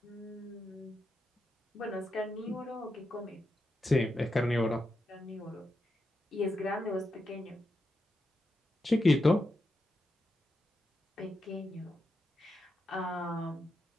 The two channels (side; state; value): both; normal; correlation 0.86